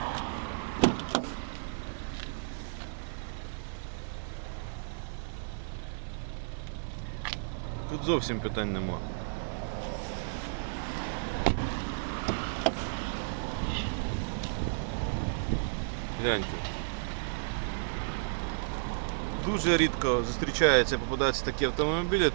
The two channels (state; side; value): silent; left; digital silence